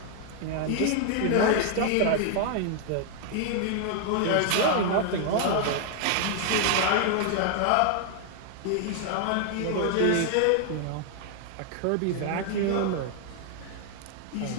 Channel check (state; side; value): different; both; correlation 0.00